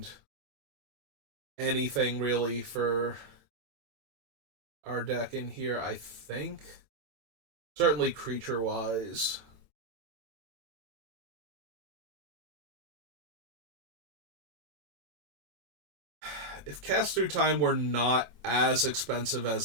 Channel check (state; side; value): late; left; 25 ms